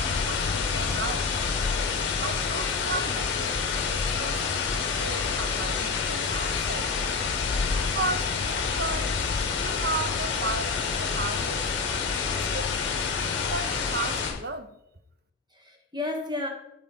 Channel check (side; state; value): right; quieter; 4.0 dB